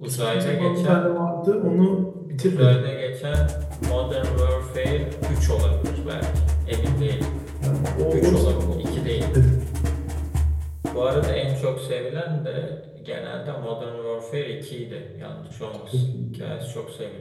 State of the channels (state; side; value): identical; both; correlation 1.00